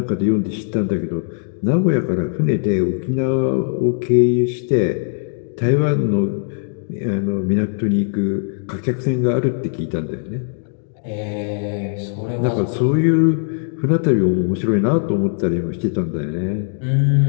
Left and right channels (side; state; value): right; silent; digital silence